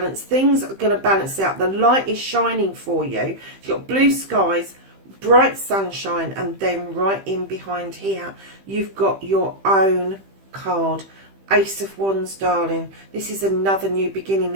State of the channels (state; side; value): late; left; 15 ms